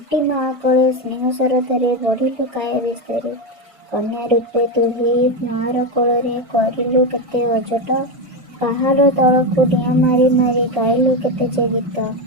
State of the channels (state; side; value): late; left; 1.5 ms